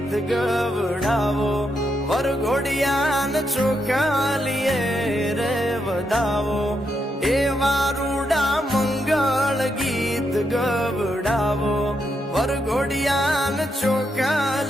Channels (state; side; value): normal; both; correlation 0.81